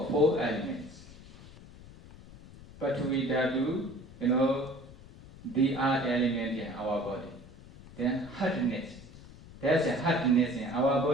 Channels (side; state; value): left; noise; rumble, 19 dB below the sound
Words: 4 elements. Pathvi dhatu, the earth element in our body. Then hardness. There's a hardness in our